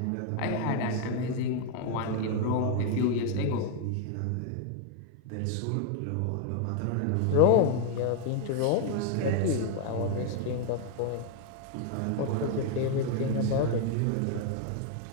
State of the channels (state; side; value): different; both; correlation 0.00